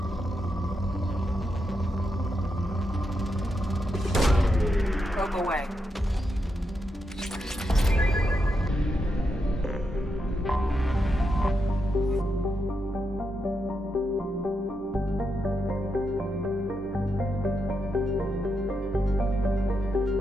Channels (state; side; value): normal; both; correlation 0.84